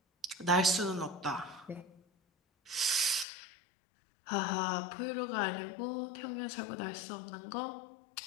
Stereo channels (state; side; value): drops out; right; at 3.2 s